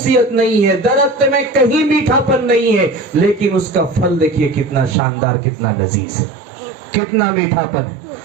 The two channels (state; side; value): drops out; left; at 5.0 s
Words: نہیں ہے، درخت میں کہیں میٹھا پن نہیں ہے، لیکن اس کا پھل دیکھیے کتنا شاندار، کتنا لذیذ ہے، کتنا میٹھا پن ہے.